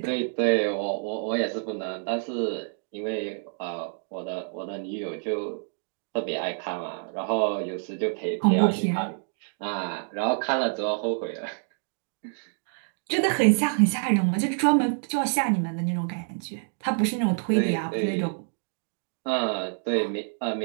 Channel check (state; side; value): silent; left; 60 dB below the other